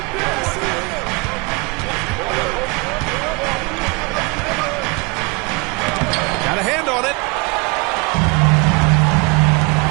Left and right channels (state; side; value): quieter; left; 29.0 dB